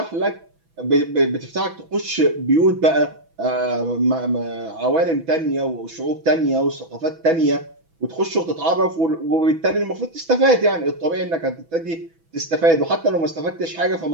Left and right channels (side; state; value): left; late; 6.1 ms